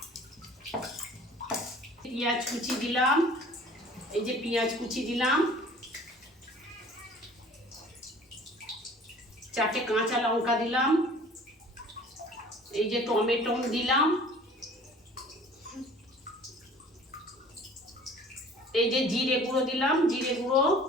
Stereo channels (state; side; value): normal; both; correlation 0.49